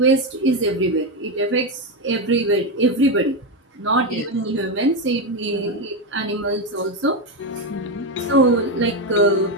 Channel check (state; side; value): normal; both; correlation 0.10